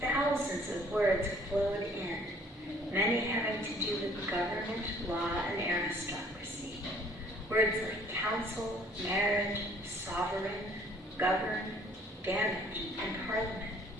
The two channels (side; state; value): both; normal; correlation 0.57